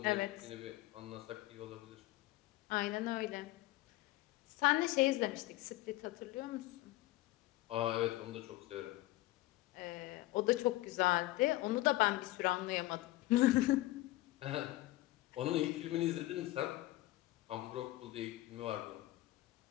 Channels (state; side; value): quieter; right; 17.8 dB